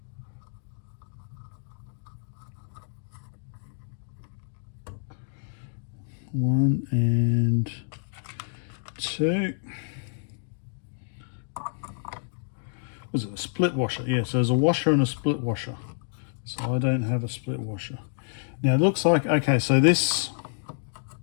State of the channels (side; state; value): right; silent; digital silence